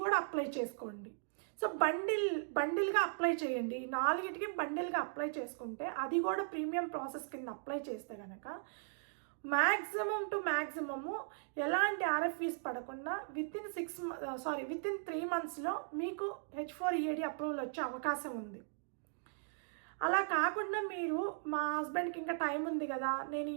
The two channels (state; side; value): silent; left; digital silence